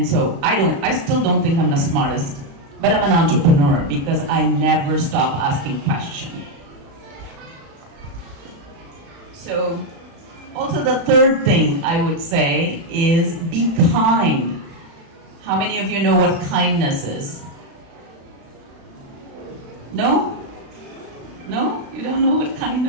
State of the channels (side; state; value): left; late; 36 ms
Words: so I still don't think I'm the smartest, but I'm an entrepreneur because I never stop asking questions. So, also the third thing I would say is be kind. How many of you know what kindness is? No? No? You don't know what